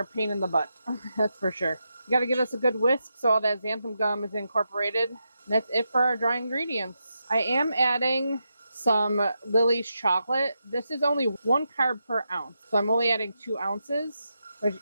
a pain in the butt. That's for sure. You got to give us a good whisk so all that xanthan gum is incorporated. And that's it for our dry ingredients. I am adding some Lily's chocolate. This is only 1 carb per ounce, so I'm only adding 2 ounces. Which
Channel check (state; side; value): inverted; both; correlation -0.86